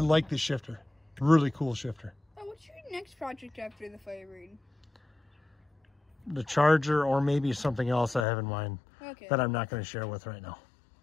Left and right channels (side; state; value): right; drops out; at 8.2 s